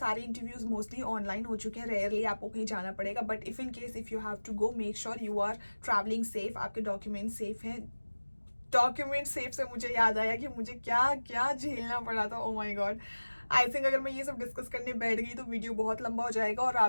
इंटरव्यूज मोस्टली ऑनलाइन हो चुके हैं, रेयरली आपको कहीं जाना पड़ेगा, बट इफ इन केस इफ यू हैव टू गो मेक श्योर यू आर ट्रैवलिंग सेफ, आपके डॉक्यूमेंट सेफ हैं। डॉक्यूमेंट सेफ से मुझे याद आया कि मुझे क्या क्या झेलना पड़ा था। ओ माय गॉड, आई थिंक अगर मैं ये सब डिस्कस करने बैठ गई तो वीडियो बहुत लंबा हो जाएगा और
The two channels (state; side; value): inverted; both; correlation -1.00